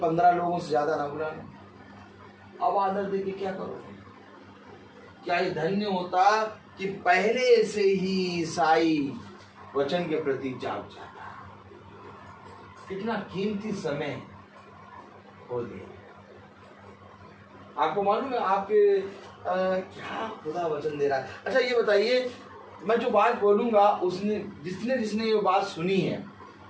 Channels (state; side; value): identical; both; correlation 1.00